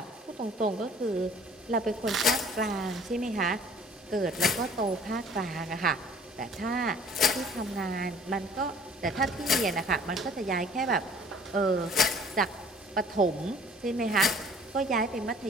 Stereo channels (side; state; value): both; normal; correlation 0.52